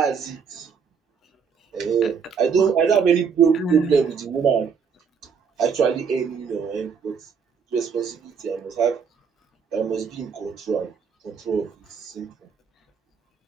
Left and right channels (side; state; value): left; quieter; 6.3 dB